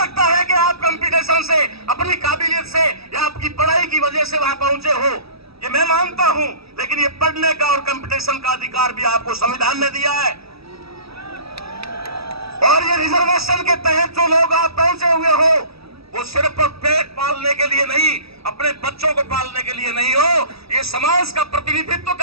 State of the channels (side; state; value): left; late; 0.77 ms